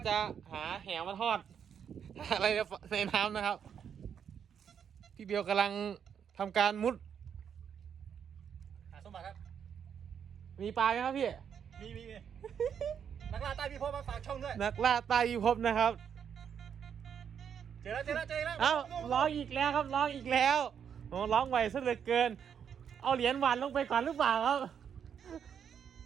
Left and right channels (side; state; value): left; quieter; 7.9 dB